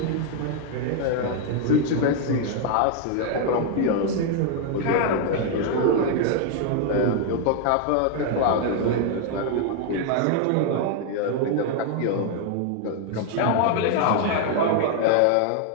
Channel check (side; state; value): both; different; correlation 0.00